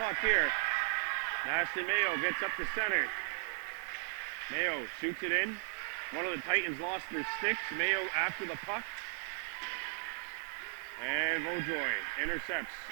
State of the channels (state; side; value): silent; left; 54 dB below the other